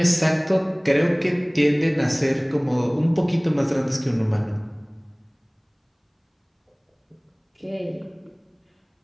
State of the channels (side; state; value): both; identical; correlation 1.00